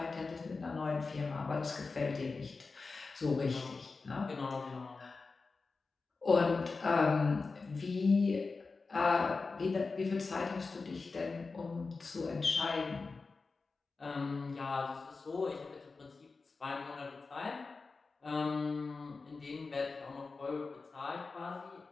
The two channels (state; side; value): quieter; right; 4.2 dB